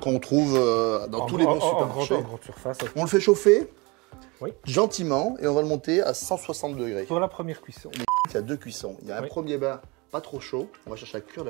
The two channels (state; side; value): quieter; left; 26.3 dB